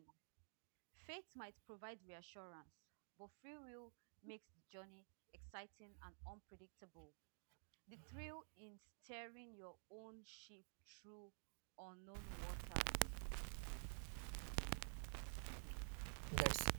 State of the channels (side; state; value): left; silent; digital silence